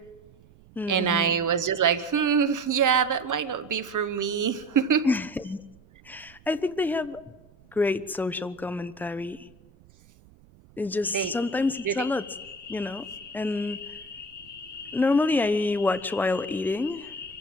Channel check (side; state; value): right; noise; rumble, 26 dB below the sound